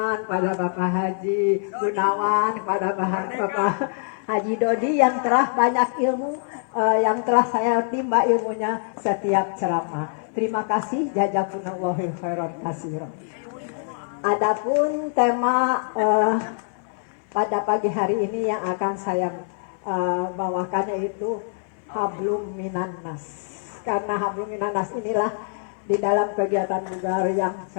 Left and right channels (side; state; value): right; silent; digital silence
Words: pada Bapak Haji Gunawan, pada Bapak Haji Dodi yang telah banyak ilmu yang telah saya timba ilmunya setiap ceramah. Terima kasih, jazakumullahu khairan katsiran. Adapun tema pada pagi hari ini yang akan saya bawakan yaitu hablum minan nas. Karena hablum minan nas inilah di dalam kegiatan bugar yang